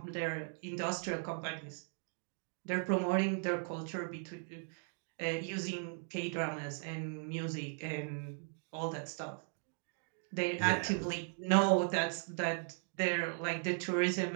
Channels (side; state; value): left; silent; 53 dB below the other